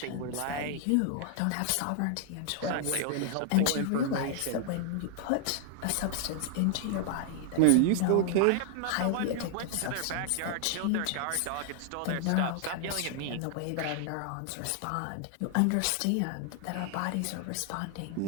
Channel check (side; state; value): both; different; correlation 0.00